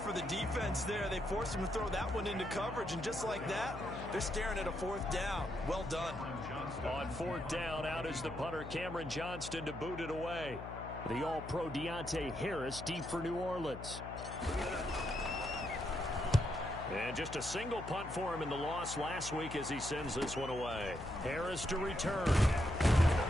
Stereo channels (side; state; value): left; noise; hum, 10 dB below the sound